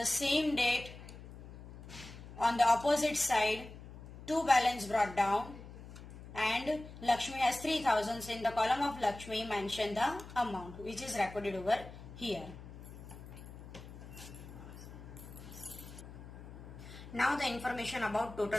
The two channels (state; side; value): noise; left; hum, 15 dB below the sound